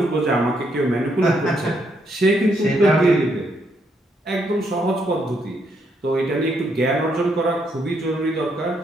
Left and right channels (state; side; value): normal; both; correlation 0.75